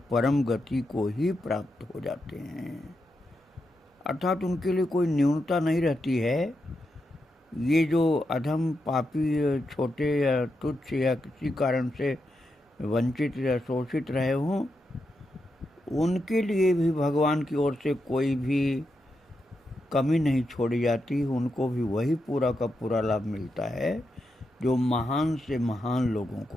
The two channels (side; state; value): both; normal; correlation 0.85